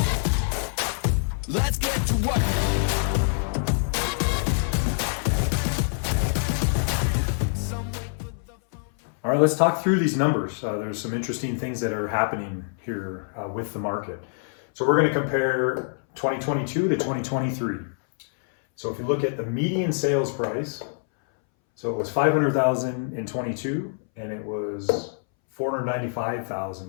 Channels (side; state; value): right; silent; 61 dB below the other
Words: Let's get to work. All right, let's talk through these numbers. There's some interesting things that are happening here with the market. So we're going to compare 2022 to 2023. So if you look at the median sales price, so it was $500,000 in 22 and it was